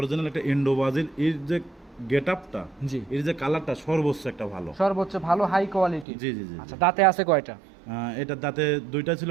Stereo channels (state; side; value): drops out; left; at 6.1 s